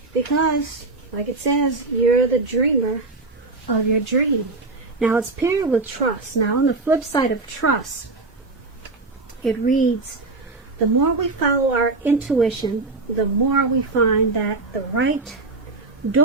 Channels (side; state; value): left; quieter; 3.5 dB